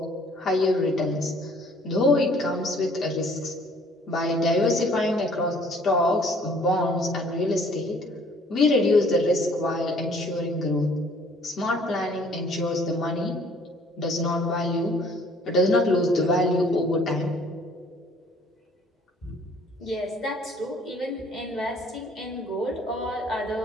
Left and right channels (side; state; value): both; normal; correlation 0.57